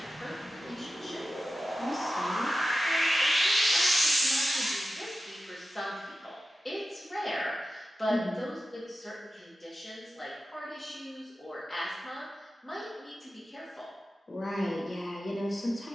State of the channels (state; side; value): normal; both; correlation 0.93